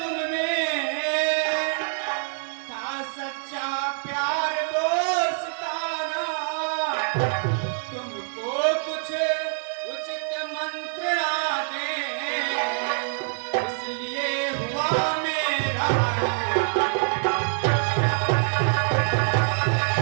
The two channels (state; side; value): silent; left; 57 dB below the other